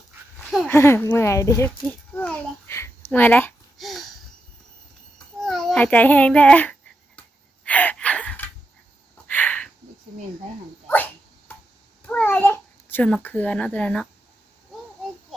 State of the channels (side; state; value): both; normal; correlation 0.85